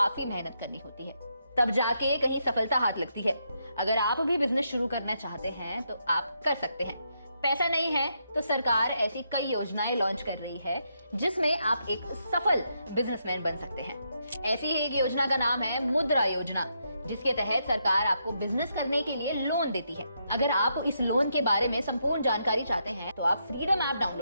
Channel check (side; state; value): both; inverted; correlation -0.79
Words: मेहनत करनी होती है, तब जाके कहीं सफलता हाथ लगती है। अगर आप भी बिजनेस शुरू करना चाहते हैं तो आप कर सकते हैं। पैसा नहीं है तो सरकार ऐसी कई योजनाएं लॉन्च कर रही है जिसमें आप एक सफल बिजनेसमैन बन सकते हैं। ऐसी ही एक योजना का नाम है मुद्रा योजना, जिसके तहत सरकार आपको बिजनेस करने के लिए लोन देती है। अगर आप इस लोन के बारे में संपूर्ण जानकारी चाहते हैं तो आप फ्रीडम ऐप